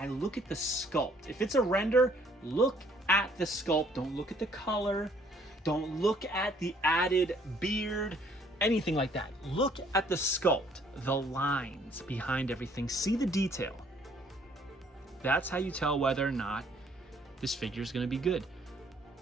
look at the sculpt. If it's a render, look at the sculpt. Don't look at the color. Don't look at the added beard, anything like that. Look at the sculpt, the lines behind everything. See the detail. That's how you tell whether or not this figure is going to be good.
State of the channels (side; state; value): both; normal; correlation 0.62